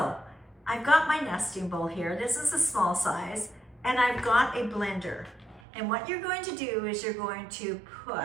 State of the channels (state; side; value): drops out; left; at 5.6 s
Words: I've got my nesting bowl here. This is a small size, and I've got a blender. And what you're going to do is you're going to